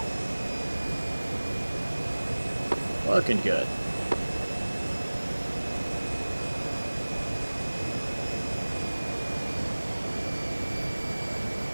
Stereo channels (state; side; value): inverted; both; correlation -1.00